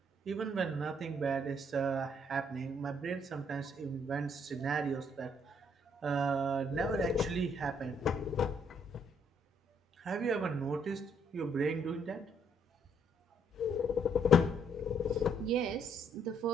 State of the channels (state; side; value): normal; both; correlation 0.68